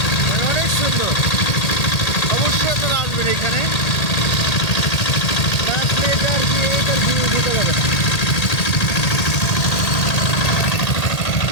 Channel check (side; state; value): right; late; 1.8 ms